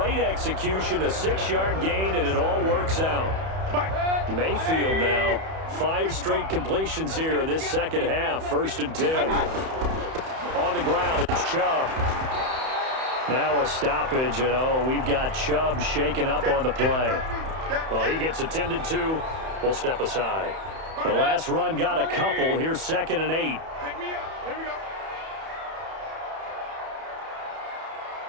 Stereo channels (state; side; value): late; left; 31 ms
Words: execution, a 6-yard gain, and it all works out. Mayfield now, 5 straight completions here in this second half, 1st and 10. On the ground, it's Chubb. Now a stoppage, and we've got Chubb shaken up on the play. Well, he gets attended to. We'll step aside. The last run got a couple. Here's 2nd and 8. Pick me up. Here we go.